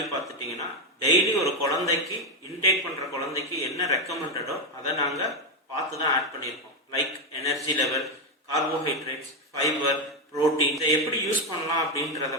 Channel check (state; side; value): normal; both; correlation 0.08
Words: பார்த்துட்டிங்கன்னா, டெய்லி ஒரு குழந்தைக்கு இன்டேக் பண்ணுற குழந்தைக்கு என்ன ரெக்கமெண்டடோ அதை நாங்கள் பார்த்து தான் ஆட் பண்ணியிருக்கோம். Like energy level, carbohydrates, fibre, protein. இதை எப்படி யூஸ் பண்ணலாம் அப்படின்றத